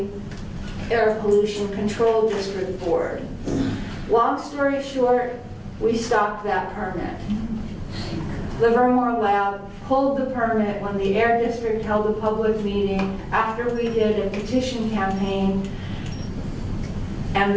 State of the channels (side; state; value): both; identical; correlation 1.00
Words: Air Pollution Control District Board. Long story short, we stopped that permit. Livermore Lab pulled the permit when the Air District held a public meeting after we did a petition campaign, and